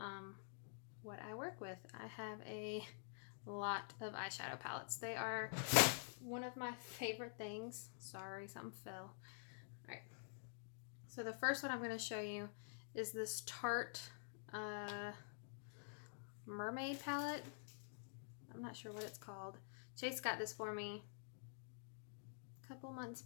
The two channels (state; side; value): silent; right; digital silence